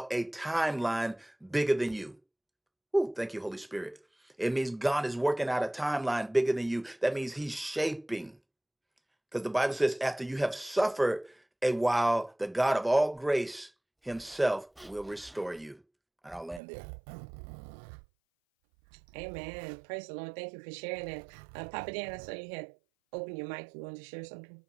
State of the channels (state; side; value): drops out; left; at 16.6 s